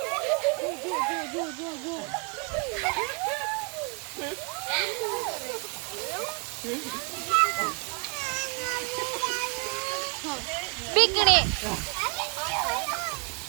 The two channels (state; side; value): quieter; left; 34.0 dB